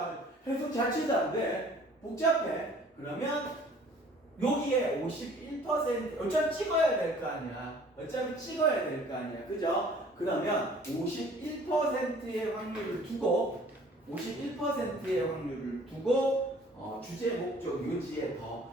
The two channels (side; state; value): both; normal; correlation 0.53